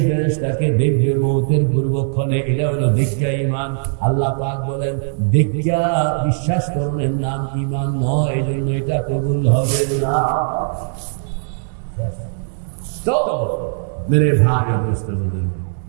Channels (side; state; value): left; silent; digital silence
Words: ফেরেশতাকে দেখবে মওতের পূর্বক্ষণে, এটা হলো দেখিয়া ঈমান। আল্লাহ পাক বলেন, দেখিয়া বিশ্বাস করণের নাম ঈমান নয়, এই জন্য এটা কবুল হবে না। তো মেরে ভাই অবস্থা বলেন,